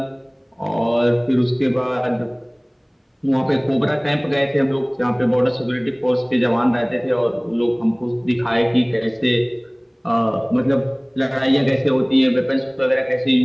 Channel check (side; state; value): both; identical; correlation 1.00